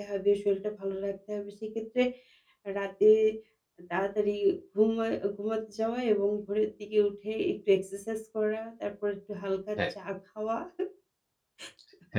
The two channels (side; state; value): both; identical; correlation 1.00